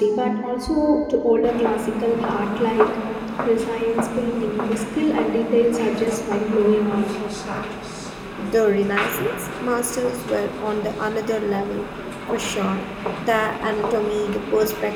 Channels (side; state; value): both; identical; correlation 1.00